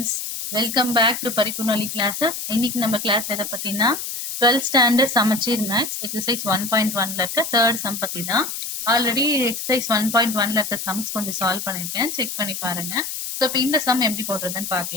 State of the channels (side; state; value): left; noise; hiss, 6 dB below the sound